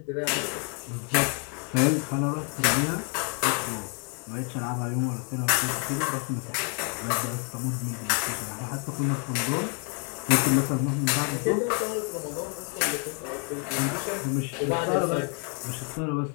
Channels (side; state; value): right; quieter; 38.9 dB